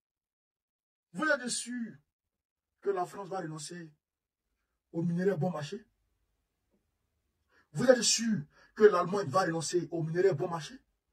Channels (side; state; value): both; identical; correlation 1.00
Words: Vous êtes sûr que la France va renoncer aux minerais bon marché? Vous êtes sûr que l'Allemagne va renoncer aux minerais bon marché?